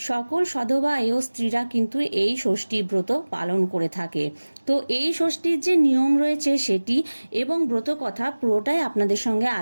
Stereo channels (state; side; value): inverted; both; correlation -1.00